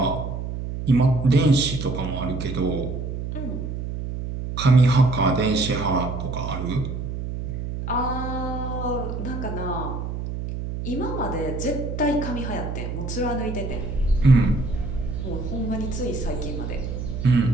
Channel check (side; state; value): right; noise; hum, 5 dB below the sound